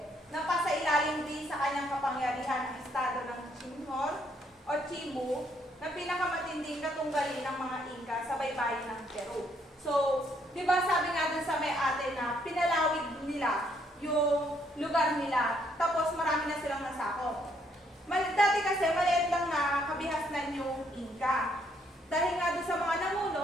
kanyang kapangyarihan ang estado ng Chinhor o Cebu na pinakamatinding katunggali ng mga Inca sa baybayin ng Peru. So, di ba sabi nga dun sa may ate na pinalawig nila yung lugar nila, tapos marami na silang nasakop. Dati kasi maliit lang na kabihasnan yung Inca. Dahil nga doon sa mga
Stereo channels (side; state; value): both; normal; correlation 0.70